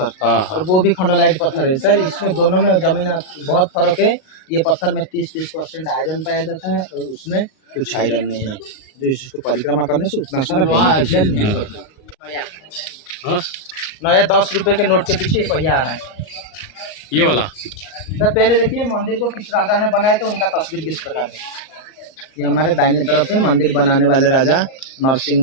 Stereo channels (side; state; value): right; late; 38 ms